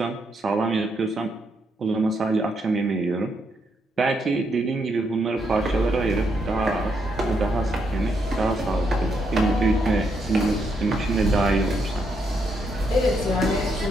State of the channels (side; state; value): both; normal; correlation 0.78